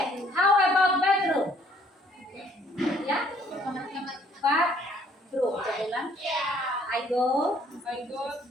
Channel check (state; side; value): normal; both; correlation 0.62